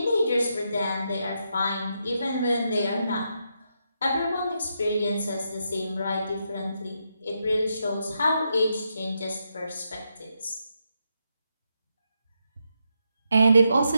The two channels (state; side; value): inverted; both; correlation -0.82